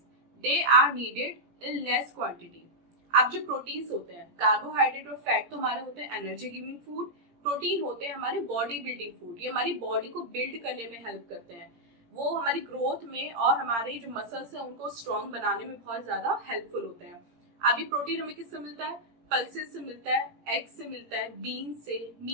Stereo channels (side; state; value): left; late; 17 ms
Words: They are needed in less quantity. अब जो proteins होते हैं, carbohydrate और fat तो हमारे होते हैं energy giving food, protein होते हैं हमारे बॉडी बिल्डिंग फूड। ये हमारी बॉडी को बिल्ड करने में हेल्प करते हैं, वो हमारी ग्रोथ में और हमारे जो मसल्स हैं उनको स्ट्रॉन्ग बनाने में बहुत ज्यादा हेल्पफुल होते हैं। अभी प्रोटीन हमें किससे मिलता है, पल्सेस से मिलता है, एग से मिलता है, बीन से,